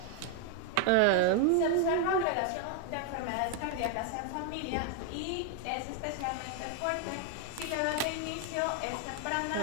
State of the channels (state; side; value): different; both; correlation 0.00